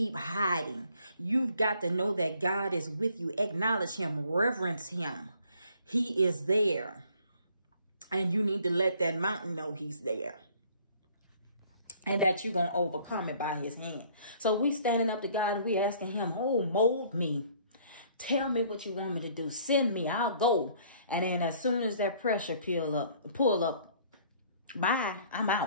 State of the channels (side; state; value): both; inverted; correlation -0.59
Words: hiding. You've got to know that God is with you. Acknowledge him. Reverence him. He is there. And you need to let that mountain know he's there. And that you're going to overcome it by his hand. So we standing up to God and we asking him, mold me. Tell me what you want me to do. Send me. I'll go. And then as soon as that pressure pull up, bye, I'm